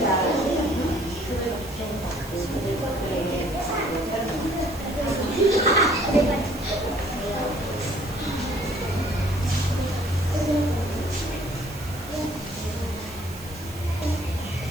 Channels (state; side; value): noise; right; hiss, 17 dB below the sound